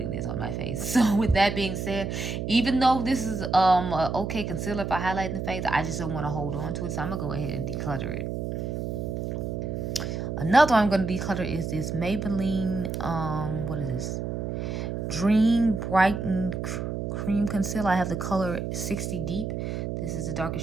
this on my face. So, with that being said, even though this is a okay concealer for highlighting the face, I just don't want to hold on to it. So, I'm going to go ahead and declutter it. Another one I'm going to declutter is this Maybelline, what is this? Dream Brightened Cream Concealer. I have the color 60 Deep. This is the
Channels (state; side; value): noise; right; hum, 3 dB below the sound